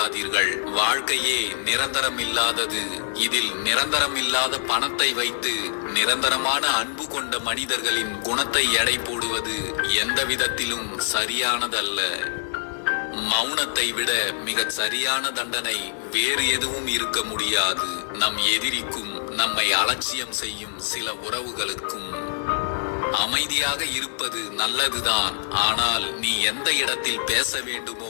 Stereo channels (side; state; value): right; silent; digital silence